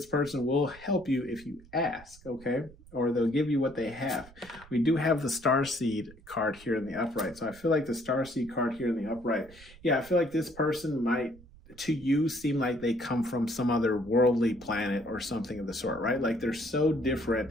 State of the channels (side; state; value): right; noise; rumble, 22 dB below the sound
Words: person will help you if you ask, okay? Or they'll give you what they have. We do have the Starseed card here in the upright. So I feel like the Starseed card here in the upright, I feel like this person might, to you, seem like they come from some other worldly planet or something of the sort, right? Like they're so